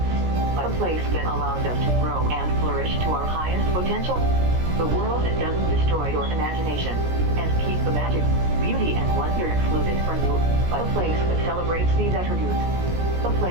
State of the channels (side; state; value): left; late; 17 ms